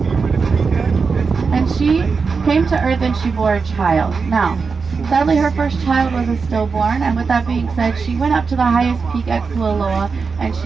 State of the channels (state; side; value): quieter; left; 5.0 dB